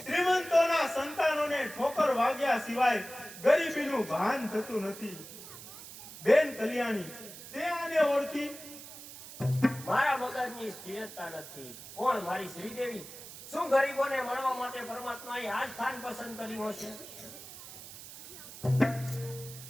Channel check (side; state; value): right; noise; hiss, 14 dB below the sound